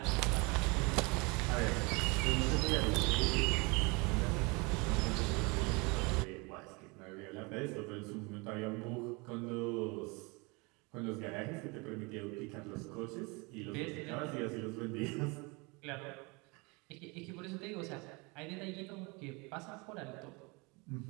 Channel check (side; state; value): left; quieter; 28.0 dB